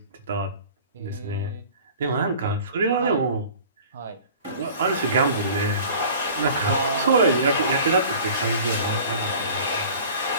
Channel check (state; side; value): inverted; both; correlation -0.44